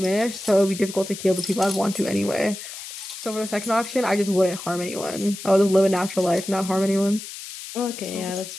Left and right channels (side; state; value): left; noise; hiss, 11 dB below the sound